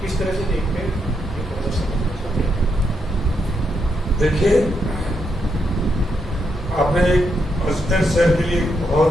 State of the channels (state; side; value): normal; both; correlation 0.80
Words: किस तरह से देखते हैं? देखिए, आपने अजमेर शहर के लिए